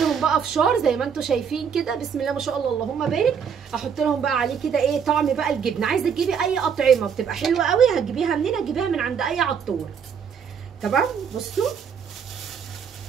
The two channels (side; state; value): left; quieter; 7.0 dB